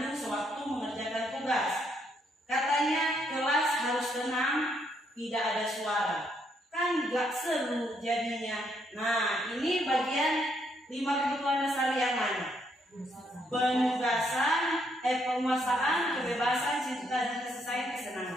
sewaktu mengerjakan tugas. Katanya kelas harus tenang, tidak ada suara. Kan gak seru jadinya. Nah, ini bagian 5 kebutuhan dasar yang mana? Penguasaan, kebebasan, cinta, dan kasih sayang,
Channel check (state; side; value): normal; both; correlation 0.73